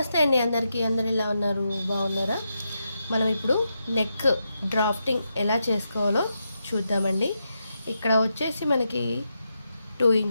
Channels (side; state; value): both; inverted; correlation -0.85